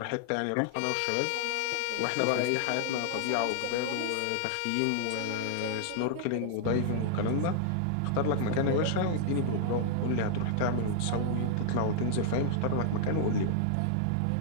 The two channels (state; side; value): different; both; correlation -0.01